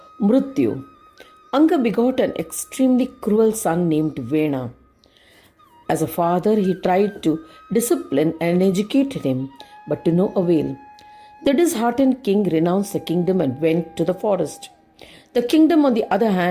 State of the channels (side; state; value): both; identical; correlation 1.00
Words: Murtya. Anga begot an extremely cruel son named Vena. As a father, he tried to discipline and educate him, but to no avail. The disheartened king renounced the kingdom and went to the forest. The kingdom, on the other